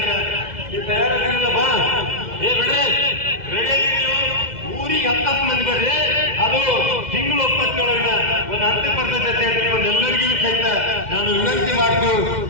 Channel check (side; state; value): left; late; 2.0 ms